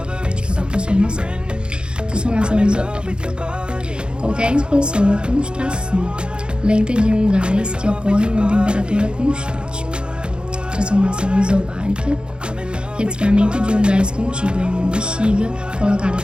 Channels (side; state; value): left; late; 0.052 ms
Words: de cada transformação. Transformação isotérmica. Qualquer expansão ou contração lenta de um gás que ocorre em uma temperatura constante. Transformação isobárica resfriamento de um gás contido em uma bexiga colocada